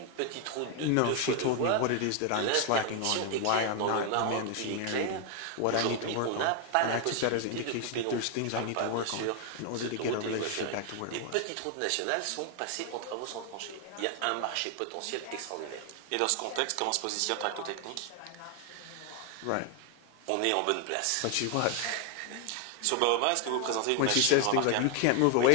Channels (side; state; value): both; different; correlation 0.00